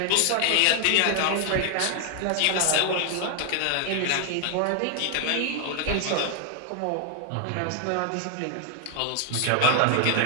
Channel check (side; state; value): both; different; correlation 0.00